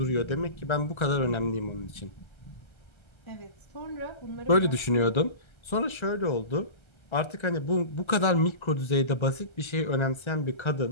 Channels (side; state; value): right; late; 1.3 ms